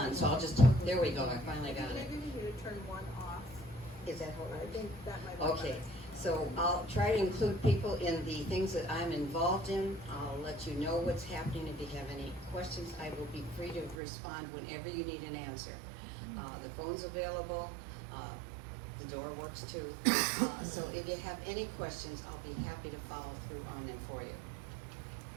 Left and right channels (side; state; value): left; drops out; at 14.0 s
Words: so I'll just, there we go, I finally got it. Maybe we need to turn one off. Is that all I right? think that might be Okay, so I'll try to include people in the things that I'm involved in. I'll let you know what's happening. If you have any questions, I will be free to respond whenever you need an answer. The phone's available, the door works too. So if you have any questions, I'll be happy to follow through on them for you.